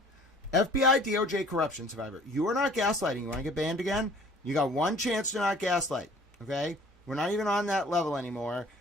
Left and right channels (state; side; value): normal; both; correlation 0.51